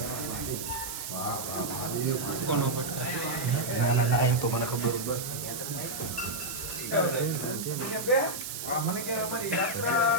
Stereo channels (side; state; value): right; noise; hiss, 6 dB below the sound